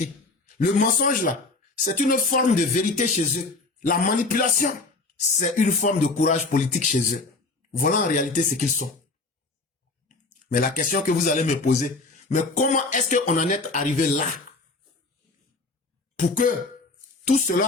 Le mensonge là, c'est une forme de vérité chez eux. La manipulation, c'est une forme de courage politique chez eux. Voilà en réalité ce qu'ils sont. Mais la question que vous allez me poser, mais comment est-ce qu'on en est arrivé là pour que tout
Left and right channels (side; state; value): right; quieter; 3.5 dB